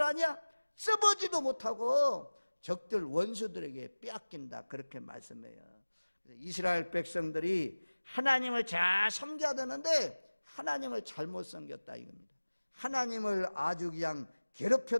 아냐? 써보지도 못하고 적들 원수들에게 빼앗긴다 그렇게 말씀해요. 이스라엘 백성들이 하나님을 잘 섬겨야 되는데 하나님을 잘못 섬겼다 이겁니다. 하나님을 아주 그냥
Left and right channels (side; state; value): both; inverted; correlation -1.00